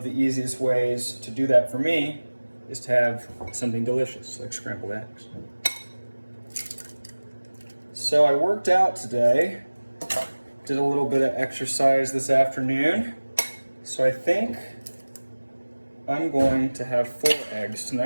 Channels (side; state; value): both; inverted; correlation -1.00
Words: the easiest ways to do that for me is to have something delicious, like scrambled eggs. So I worked out today, did a little bit of exercise this afternoon. So I think I'm going to have 4 eggs